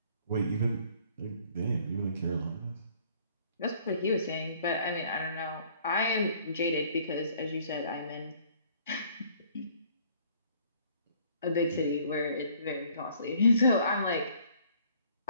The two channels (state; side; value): inverted; both; correlation -0.59